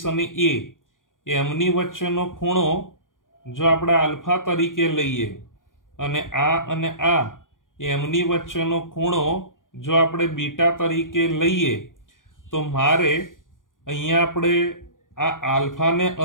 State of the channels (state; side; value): late; right; 0.89 ms